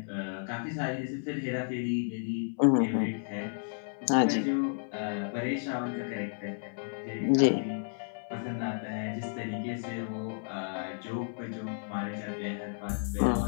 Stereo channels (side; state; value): right; silent; 56 dB below the other